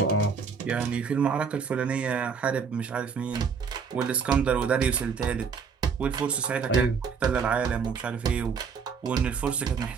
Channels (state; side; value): quieter; left; 5.9 dB